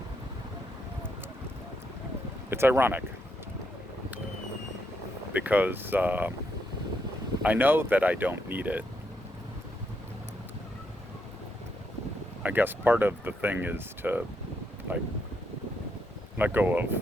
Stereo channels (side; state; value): both; normal; correlation 0.78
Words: it's ironic because I know that I don't need it. I guess part of the thing is to like let go